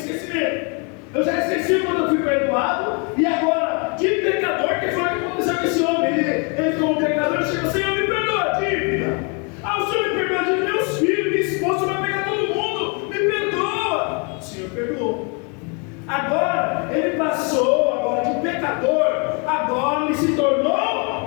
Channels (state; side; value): quieter; right; 34.9 dB